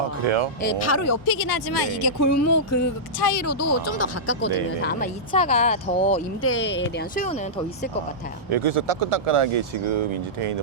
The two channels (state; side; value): normal; both; correlation -0.13